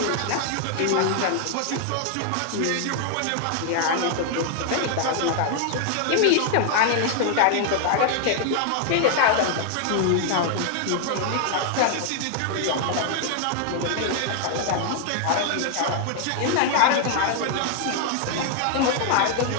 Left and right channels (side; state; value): both; different; correlation 0.00